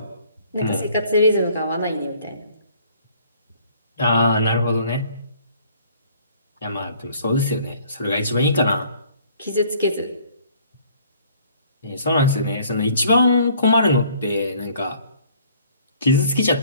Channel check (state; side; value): inverted; both; correlation -0.57